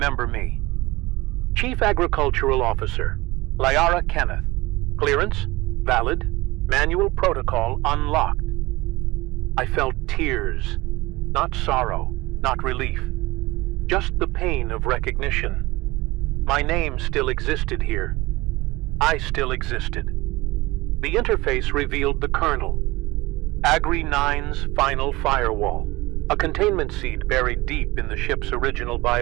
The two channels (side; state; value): left; quieter; 20.8 dB